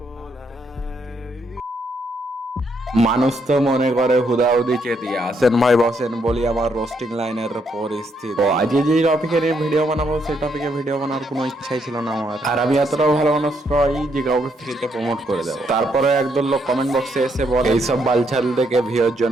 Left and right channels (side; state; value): both; normal; correlation 0.74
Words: মানুষ তো মনে করে হুদাহুদি চেতিয়া আসেন ভাই বসেন বলি আমার রোস্টিং লাইনের পরিস্থিতি। তো আজকে যে টপিকের ভিডিও বানাবো সেই টপিকে ভিডিও বানার কোনো ইচ্ছাই ছিল না আমার, আর আমি এতটাও ভালো মানুষ নই যে কাউকে ফ্রিতে প্রমোট করে দেবো। তারপরে একদল লোক কমেন্ট বক্সে এসে বলে এইসব বালছাল দেখে ভিউর